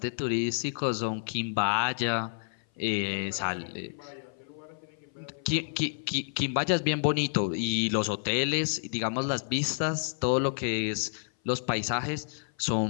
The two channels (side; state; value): right; silent; 56 dB below the other